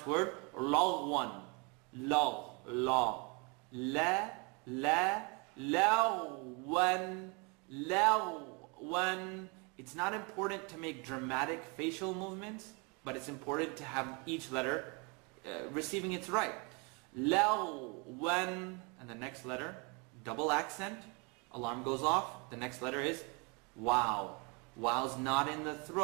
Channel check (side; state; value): left; quieter; 31.5 dB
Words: word, lagwan. Lag, la. Lagwan. Lagwan. It's not important to make dramatic facial movements, but it's important to have each letter receiving its right. Lagwan. And the next letter, double accent. Alarm goes off. The next letter is wow. Wow's not in the